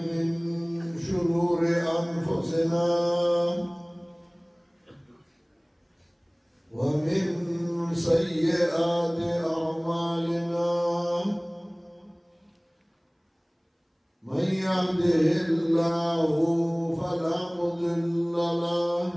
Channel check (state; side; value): identical; both; correlation 1.00